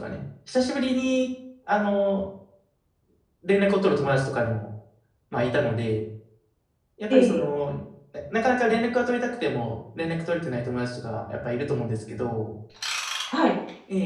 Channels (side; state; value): both; identical; correlation 1.00